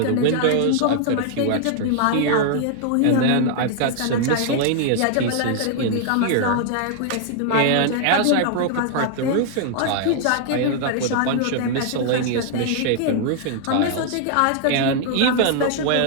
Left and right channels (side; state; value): both; different; correlation 0.00